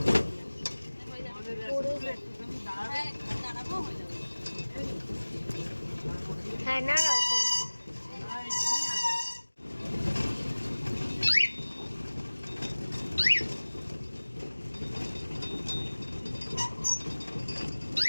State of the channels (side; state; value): both; inverted; correlation -1.00